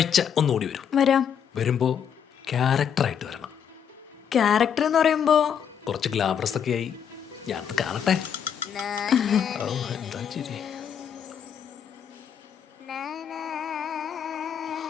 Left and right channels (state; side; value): quieter; right; 8.1 dB